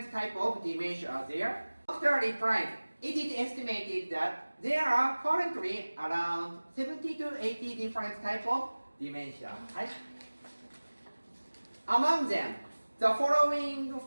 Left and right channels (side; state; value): both; inverted; correlation -1.00